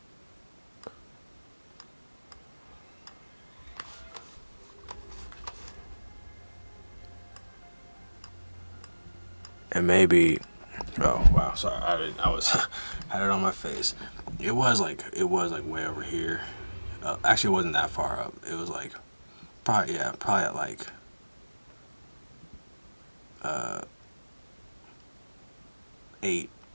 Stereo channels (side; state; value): both; inverted; correlation -1.00